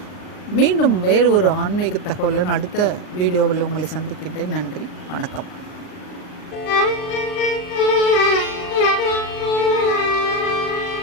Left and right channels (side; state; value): right; late; 39 ms